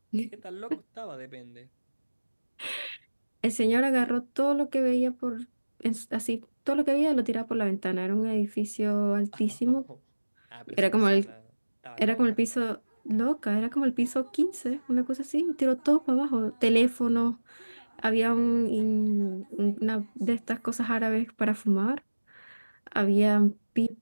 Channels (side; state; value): both; inverted; correlation -1.00